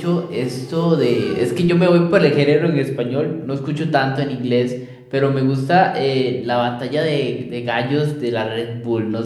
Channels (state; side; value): identical; both; correlation 1.00